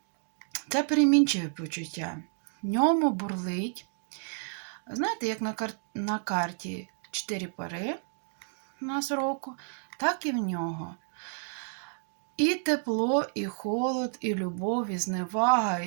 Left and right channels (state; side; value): silent; left; 58 dB below the other